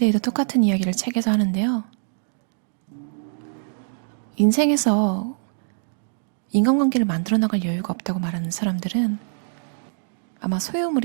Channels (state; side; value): silent; left; digital silence